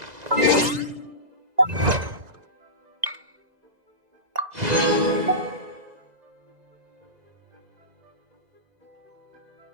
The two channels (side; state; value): left; late; 2.0 ms